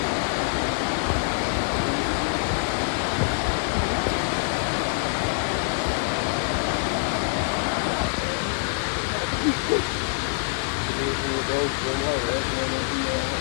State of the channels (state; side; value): silent; right; 62 dB below the other